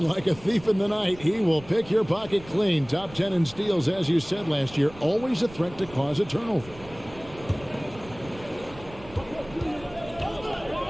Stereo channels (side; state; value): right; noise; rumble, 19 dB below the sound